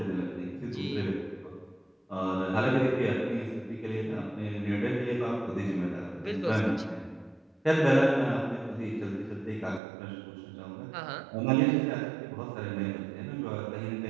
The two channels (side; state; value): left; drops out; at 9.8 s